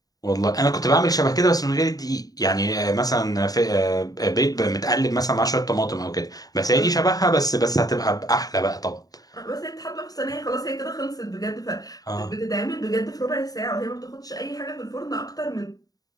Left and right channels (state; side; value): late; right; 0.18 ms